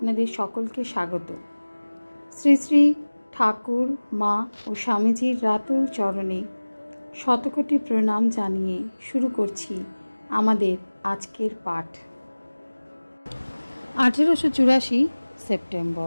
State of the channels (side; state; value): both; inverted; correlation -1.00